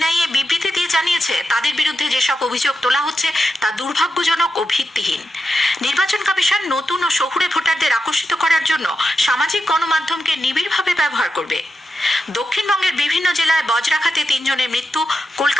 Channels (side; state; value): both; normal; correlation 0.88